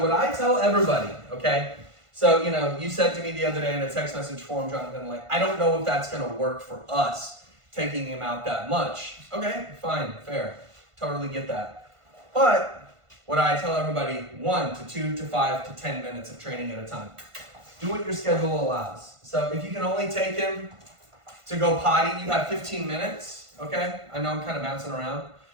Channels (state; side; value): late; left; 1.5 ms